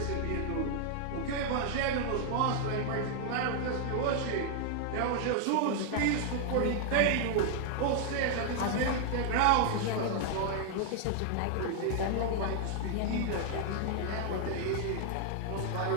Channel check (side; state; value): both; different; correlation 0.00